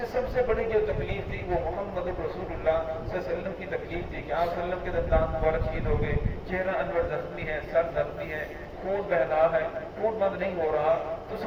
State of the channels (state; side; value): identical; both; correlation 1.00